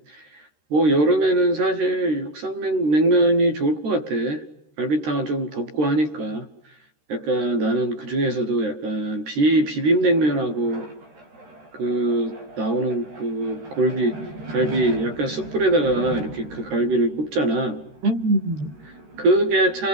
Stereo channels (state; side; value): late; left; 13 ms